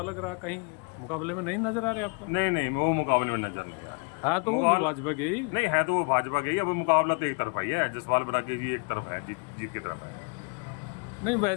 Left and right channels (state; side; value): quieter; right; 35.1 dB